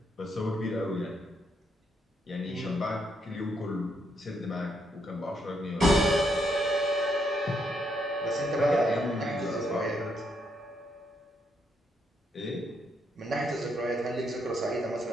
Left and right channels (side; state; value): both; normal; correlation 0.76